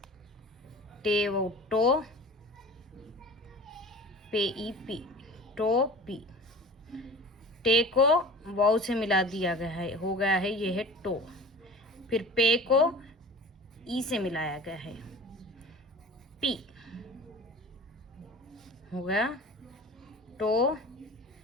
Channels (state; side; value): normal; both; correlation 0.40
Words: टे वो टो, पे ई पी, टोपी। टे को वाव से मिला दिया गया है, हो गया है ये है टो। फिर पे को ई से मिलाया गया है, पी हो गया टो